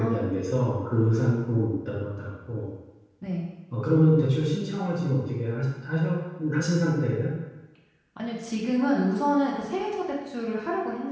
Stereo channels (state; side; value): identical; both; correlation 1.00